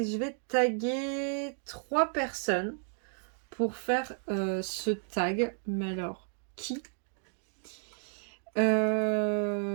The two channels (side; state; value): left; silent; 56 dB below the other